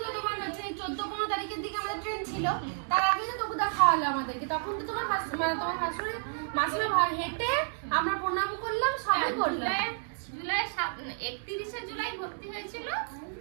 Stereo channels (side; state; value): left; silent; digital silence